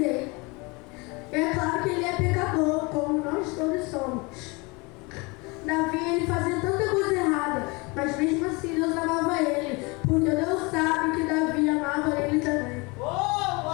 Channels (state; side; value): quieter; right; 27.2 dB